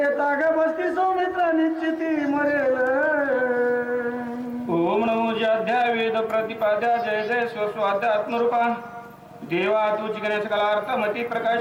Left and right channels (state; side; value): identical; both; correlation 1.00